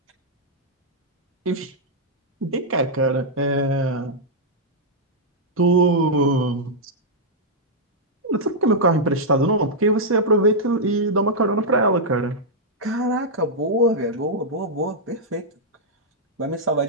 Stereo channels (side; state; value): both; normal; correlation -0.06